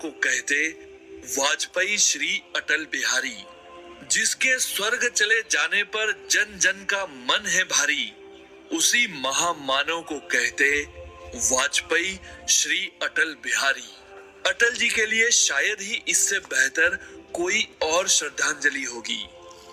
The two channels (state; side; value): identical; both; correlation 1.00